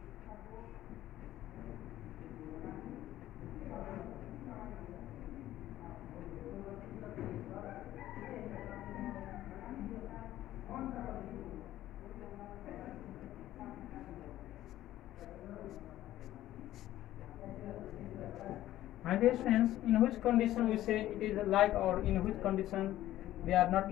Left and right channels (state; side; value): quieter; right; 14.0 dB